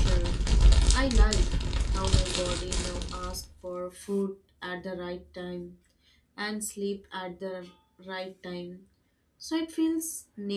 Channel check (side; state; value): both; identical; correlation 1.00